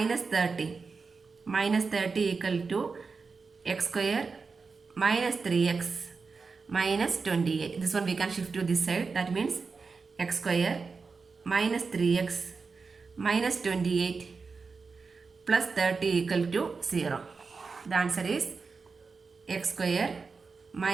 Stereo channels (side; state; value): left; quieter; 4.7 dB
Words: 30. Minus 30 equal to x square minus 3x minus 28. This one we can shift to this side. That means x square minus 3x minus 28 plus 30 equal to 0. The answer is x square